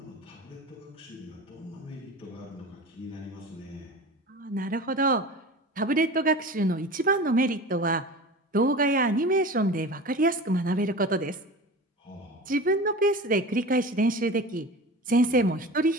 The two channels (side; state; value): both; normal; correlation 0.33